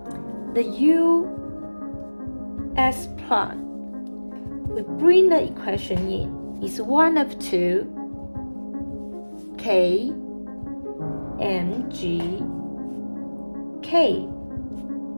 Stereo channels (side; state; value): both; inverted; correlation -1.00